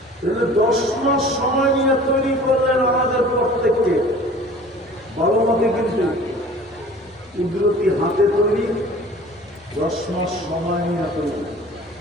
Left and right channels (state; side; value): normal; both; correlation 0.45